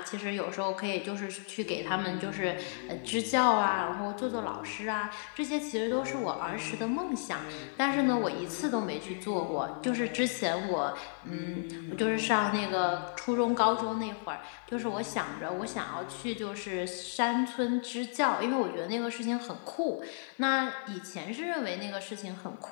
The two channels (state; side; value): silent; right; digital silence